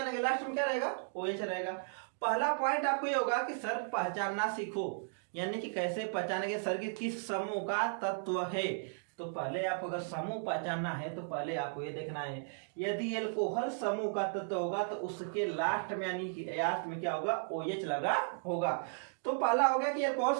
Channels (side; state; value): left; silent; digital silence